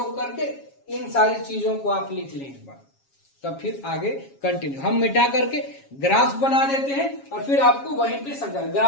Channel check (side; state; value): right; late; 7.3 ms